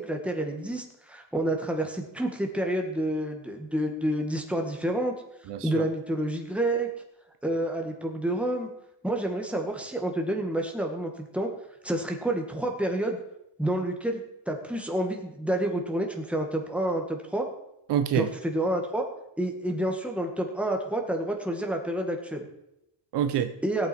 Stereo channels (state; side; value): normal; both; correlation 0.57